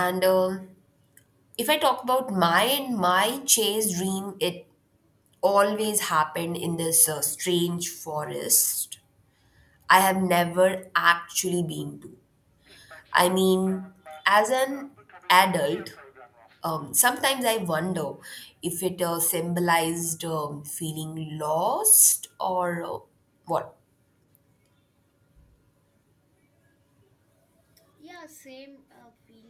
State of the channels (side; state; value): both; identical; correlation 1.00